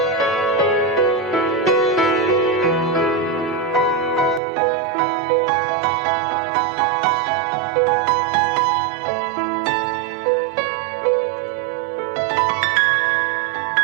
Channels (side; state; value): left; drops out; at 4.4 s